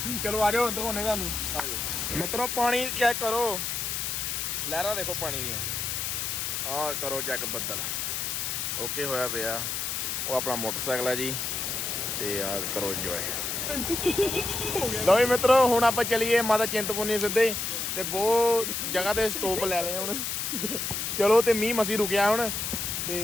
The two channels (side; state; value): left; noise; hiss, 2 dB below the sound